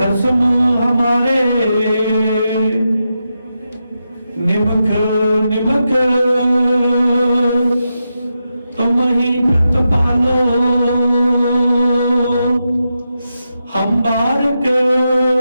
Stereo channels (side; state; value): both; inverted; correlation -0.87